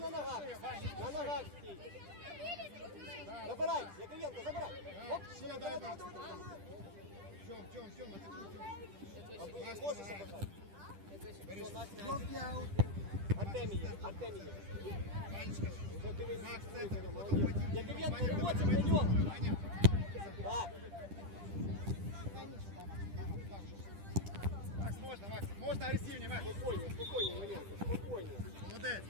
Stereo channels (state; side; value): late; left; 10 ms